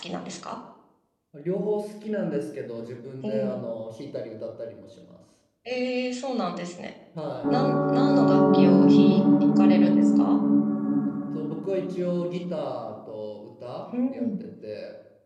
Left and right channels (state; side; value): identical; both; correlation 1.00